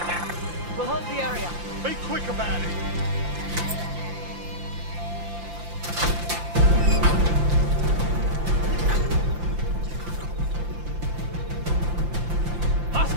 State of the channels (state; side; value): late; left; 5.8 ms